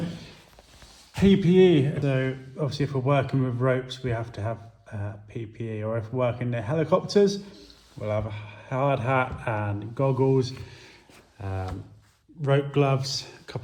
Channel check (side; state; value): both; identical; correlation 1.00